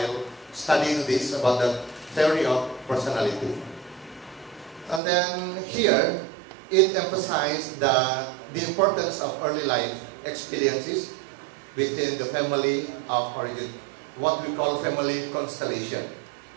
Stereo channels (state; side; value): drops out; left; at 5.0 s